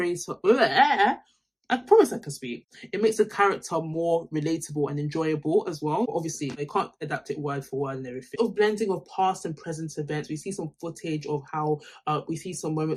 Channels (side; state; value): both; identical; correlation 1.00